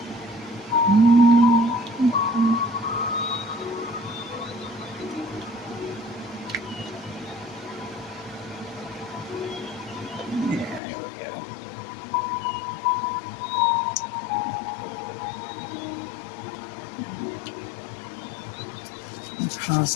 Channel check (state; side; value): drops out; right; at 10.8 s